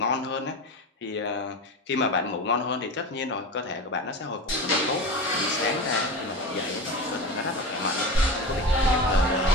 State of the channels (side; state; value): both; normal; correlation 0.26